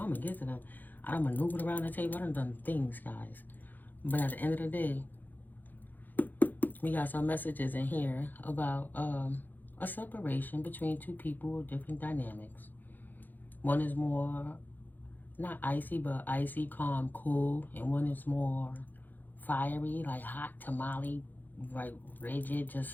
gonna get to them. I done maneuvered around the table. I done things, guys. But at the end of the day, we got some messages in here about a separation between two people with different dynamics. One is more, not icy, but icy, calm, cool. And one is more fiery, like hot tamale, like rigid,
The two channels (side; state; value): right; late; 0.086 ms